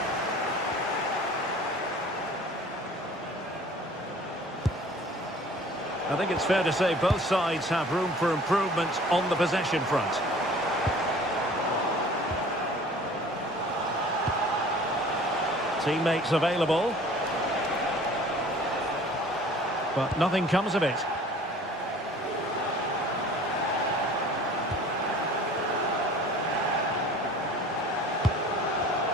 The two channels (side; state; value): both; normal; correlation 0.48